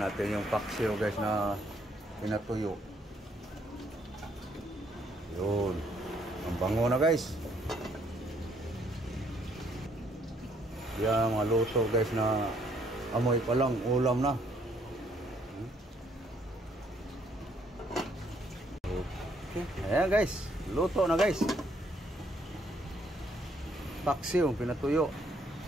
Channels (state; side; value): normal; both; correlation 0.68